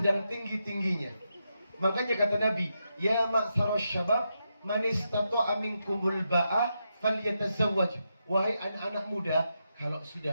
tinggi-tingginya. Makanya kata Nabi, ya ma'syaras syabab, man istata'a minkumul ba'a falyatazawwaj. Wahai anak-anak muda, kalau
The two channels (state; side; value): inverted; both; correlation -0.85